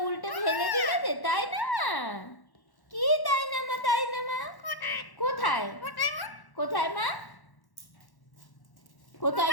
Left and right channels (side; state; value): right; late; 1.1 ms